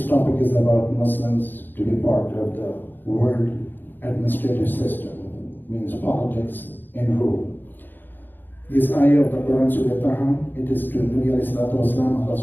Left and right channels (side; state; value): right; late; 0.092 ms